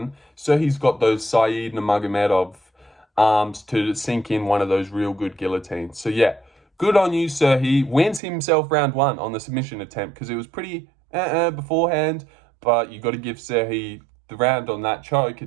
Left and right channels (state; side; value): drops out; left; at 8.2 s